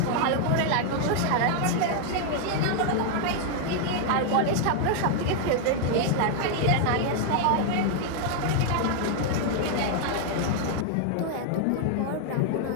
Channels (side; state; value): both; different; correlation 0.00